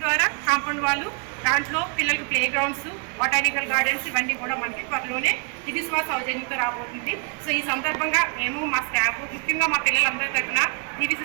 ద్వారా కాంపౌండ్ వాళ్ళు, దాంట్లో పిల్లలకు ప్లే గ్రౌండ్స్, బొటానికల్ గార్డెన్స్ ఇవన్నీ కూడా మనకి త్వరలోనే దివిశ్వాస సౌజన్యంతో రాబోతుంది. సో ఈ సందర్భంగా మేము మా స్టాఫ్ ముఖ్యంగా మా పిల్లలందరి తరఫున DVC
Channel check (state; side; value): quieter; left; 35.0 dB